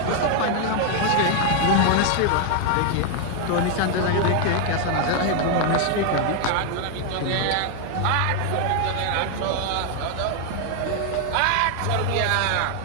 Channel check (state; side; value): different; both; correlation 0.00